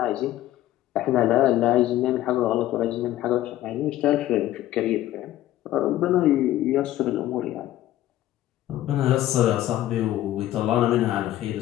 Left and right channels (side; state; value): right; quieter; 14.0 dB